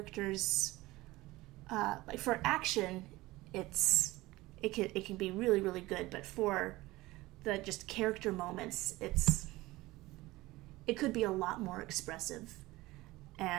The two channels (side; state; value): left; quieter; 19.3 dB